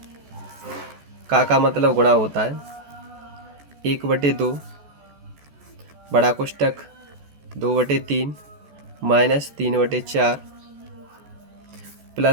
का मतलब गुणा होता है 1/2 बड़ा कोष्टक 2/3 माइनस 3/4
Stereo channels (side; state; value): left; late; 14 ms